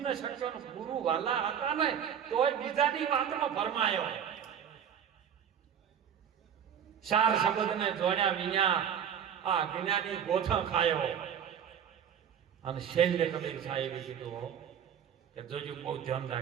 ન શક્યો. ગુરુ વાલા હતા ને તોય બીજાની વાતમાં ભરમાયો. 4 શબ્દને જોડ્યા વિના આ જ્ઞાની ગોથણ ખાયો. અને શૈલ્ય કબીર સાહેબે કીધું કે જોજો બહુ ધ્યાન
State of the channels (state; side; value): quieter; left; 8.6 dB